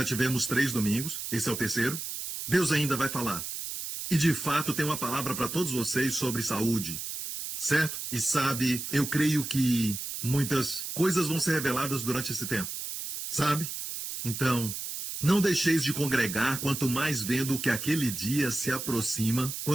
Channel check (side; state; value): right; noise; hiss, 6 dB below the sound